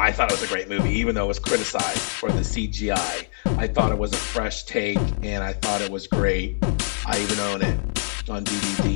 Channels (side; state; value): right; silent; 59 dB below the other